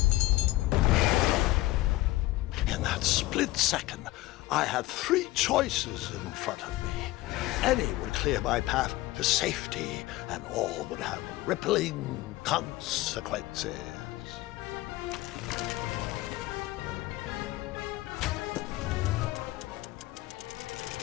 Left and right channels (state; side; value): quieter; right; 18.0 dB